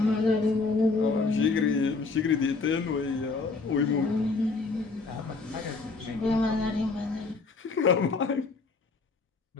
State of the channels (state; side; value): quieter; right; 4.0 dB